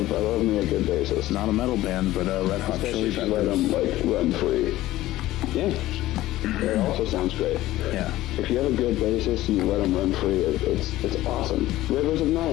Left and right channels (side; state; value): right; quieter; 15.9 dB